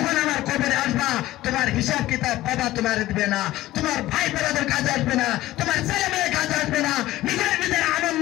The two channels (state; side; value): quieter; right; 16.0 dB